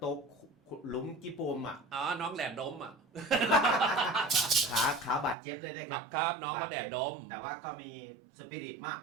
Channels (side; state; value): left; drops out; at 5.4 s